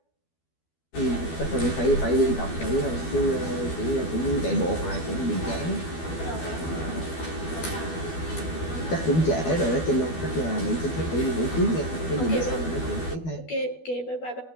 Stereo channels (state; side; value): late; right; 12 ms